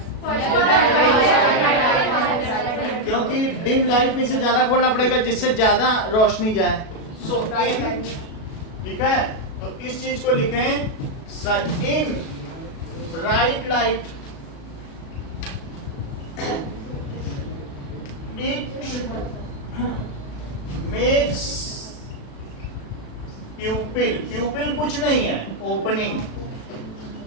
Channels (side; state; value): right; late; 37 ms